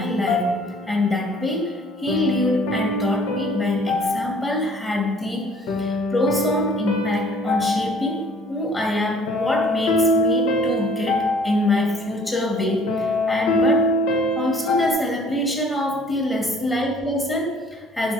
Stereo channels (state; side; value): normal; both; correlation 0.55